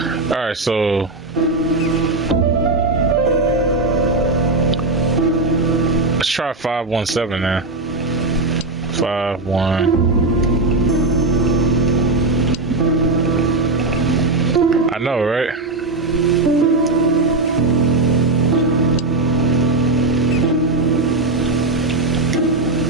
Alright, so let's try 517 now. 51. I know, right?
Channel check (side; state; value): left; quieter; 3.1 dB